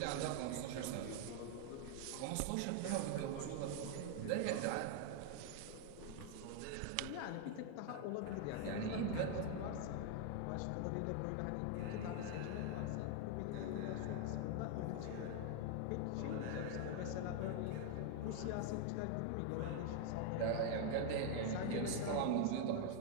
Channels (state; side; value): different; both; correlation 0.00